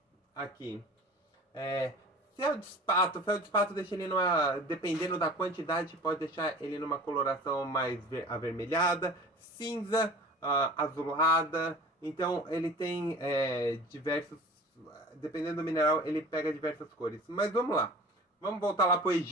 Aqui. Feldespato deixa ele numa... Dependendo da quantidade, pode deixar ele numa coloração mais avermelhada, cinza, azulada. Então, ele tem diversos... Dependendo do mineral, ele pega diversas cores. Mas vamos lá. Vamos voltar lá para o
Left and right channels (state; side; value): normal; both; correlation 0.41